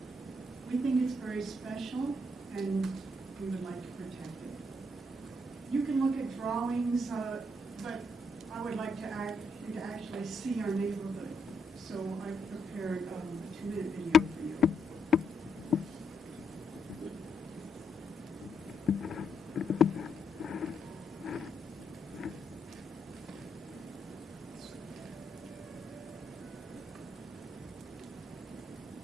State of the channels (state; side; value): normal; both; correlation 0.77